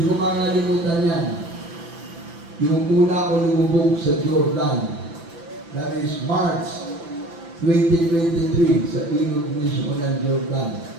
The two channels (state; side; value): late; left; 5.9 ms